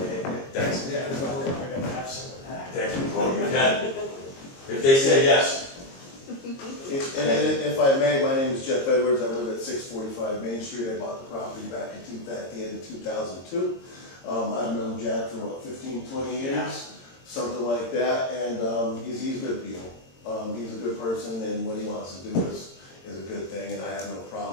Thanks. Yeah. I gotta have some of that. Thank you. Oh, you can. If they say yes. And if I may, my name is Jeff Edwards. I live at 645 Main Street. I bought the property back at the end of 2002. I've known Jack for about 15, 20 years, something like that. And he's good people. He's a good person, and what he wants to do is a good thing. And I have no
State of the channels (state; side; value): late; right; 22 ms